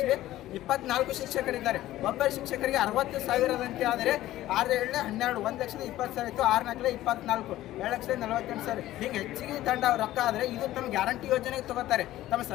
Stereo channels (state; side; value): quieter; right; 14.9 dB